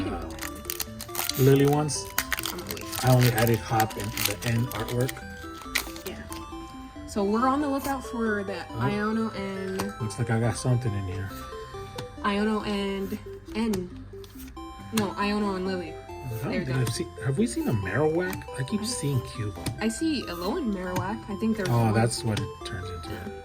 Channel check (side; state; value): both; identical; correlation 1.00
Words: of that, Lily ones, I'm gonna wait. I only added hop and the end artwork. Yeah. So we're on the lookout for the Oh. Iono and Looks like I got something in here. Iono and Iono and Lily. There we go. Have we seen a Marowak? I keep seeing Cubo. I see Alolan Marowak. I think there's. Oh, one. that's what it turns into.